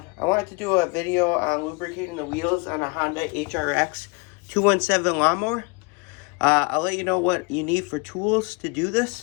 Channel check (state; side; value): quieter; right; 29.6 dB